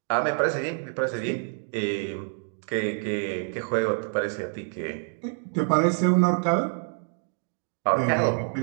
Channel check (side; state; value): left; silent; 60 dB below the other